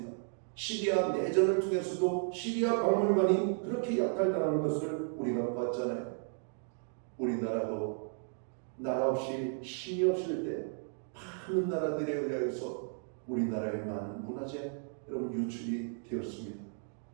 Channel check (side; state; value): left; silent; 55 dB below the other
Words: 시리아 내전을 통해서도 시리아 박물관이 그렇게 약탈당하는 것을 우리가 봤잖아요. 우리나라도 나라 없이 힘이 없을 때 많은 나라들에 의하여서 우리나라의 많은 문화재 여러분 유출이 되었습니다.